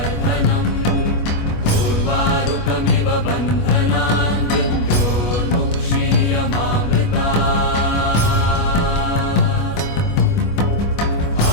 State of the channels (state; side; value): late; right; 25 ms